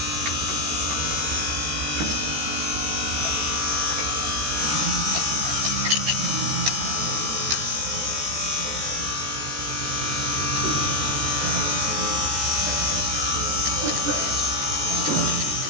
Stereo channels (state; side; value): late; left; 14 ms